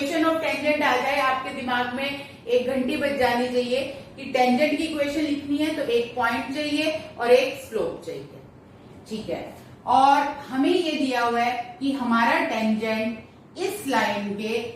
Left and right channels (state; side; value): identical; both; correlation 1.00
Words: ऑफ टेंजेंट आ जाए आपके दिमाग में एक घंटी बज जानी चाहिए कि टेंजेंट की इक्वेशन लिखनी है तो एक पॉइंट चाहिए और एक स्लोप चाहिए, ठीक है। और हमें ये दिया हुआ है कि हमारा टेंजेंट इस लाइन के